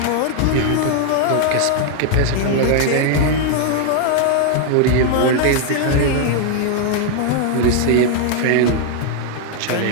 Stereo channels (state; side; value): different; both; correlation 0.00